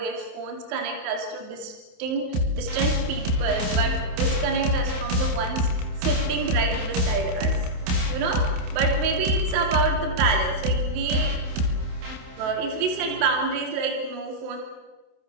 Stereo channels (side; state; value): left; late; 27 ms